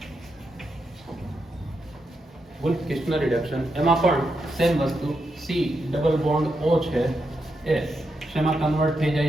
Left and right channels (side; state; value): both; normal; correlation 0.84